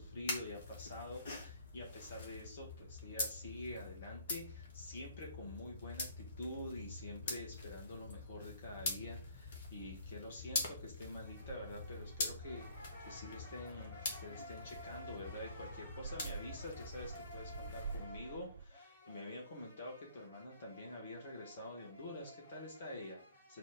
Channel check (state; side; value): inverted; both; correlation -0.60